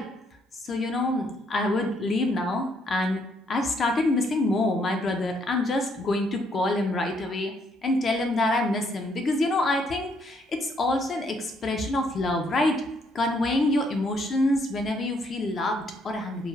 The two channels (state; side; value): normal; both; correlation 0.71